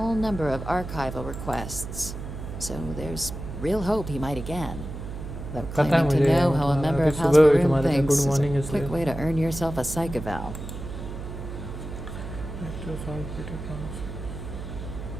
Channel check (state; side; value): noise; right; hum, 8 dB below the sound